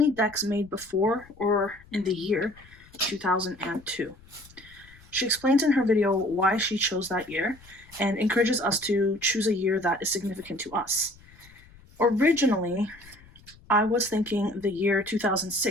decks made before or in the year 2002. She explains in her video why she chose that year and encourages us to choose a year that is significant to us. Originally, I was thinking the year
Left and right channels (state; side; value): noise; left; rumble, 24 dB below the sound